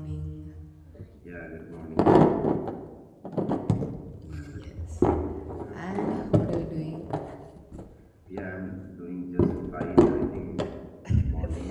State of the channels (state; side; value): identical; both; correlation 1.00